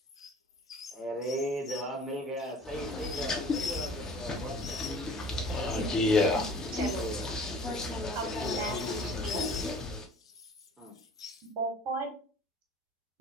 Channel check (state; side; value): normal; both; correlation 0.47